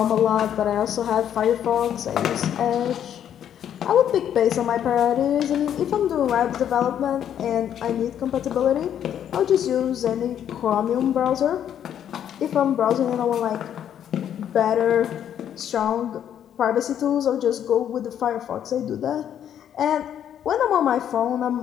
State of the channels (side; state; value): right; quieter; 9.7 dB